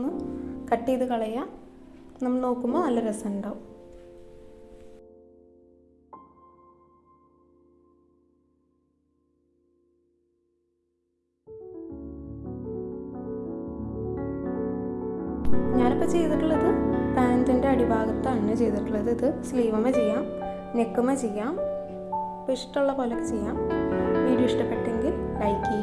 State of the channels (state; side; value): identical; both; correlation 1.00